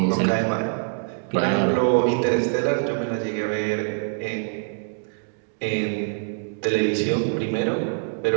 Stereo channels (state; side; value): silent; left; digital silence